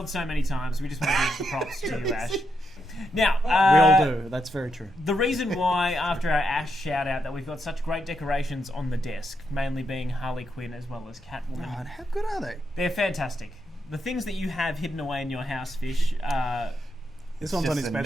so many times. We just want to give the props to you, Ash. Now, we all do. That's very true. The reason why, after our Ash shout-out, that we've got such great decorations on the desk, mainly being Harley Quinn as well as Catwoman. God, how good are they? They're fantastic. The things that you have hidden away in your house, Fish, this one's on his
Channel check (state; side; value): normal; both; correlation 0.82